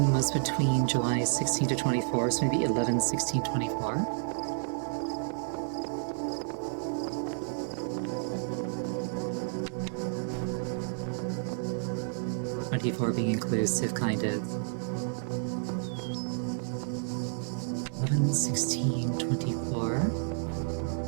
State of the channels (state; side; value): silent; left; 57 dB below the other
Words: was between July 16 to 24, so maybe 11, 16, 24. Being inclusive, kind of. 11, 16, 24.